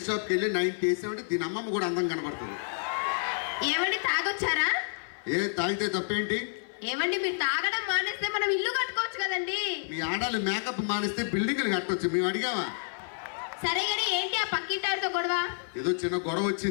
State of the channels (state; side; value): silent; right; 55 dB below the other